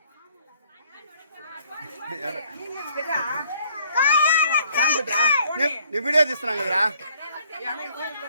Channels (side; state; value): both; inverted; correlation -0.62